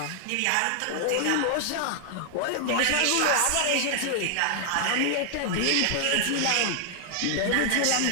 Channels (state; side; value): different; both; correlation 0.00